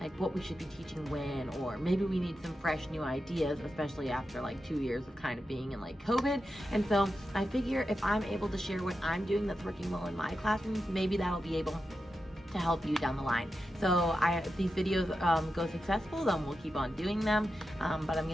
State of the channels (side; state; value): both; normal; correlation 0.90